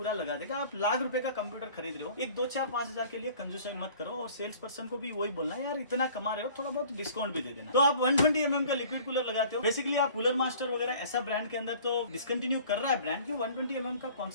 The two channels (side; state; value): both; inverted; correlation -0.49